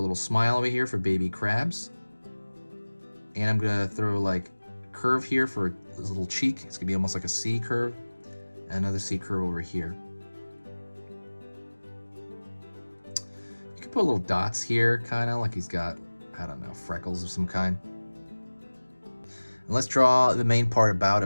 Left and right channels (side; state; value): both; inverted; correlation -1.00